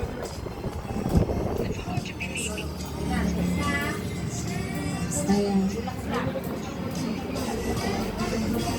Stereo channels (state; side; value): identical; both; correlation 1.00